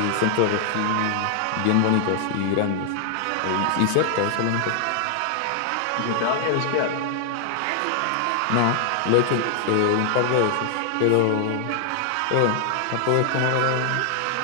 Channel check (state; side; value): different; both; correlation 0.00